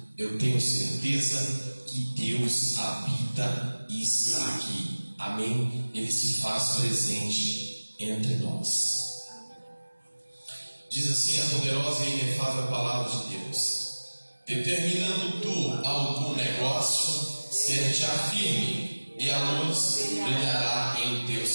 Eu tenho certeza que Deus habita e está aqui. Amém? Ele se faz presente entre nós. Diz assim a poderosa e inefável palavra de Deus: determinando tu algum negócio, ser-te firme, e a luz brilhará em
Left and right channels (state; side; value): inverted; both; correlation -1.00